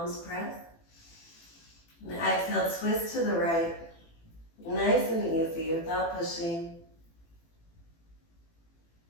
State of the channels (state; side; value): late; right; 18 ms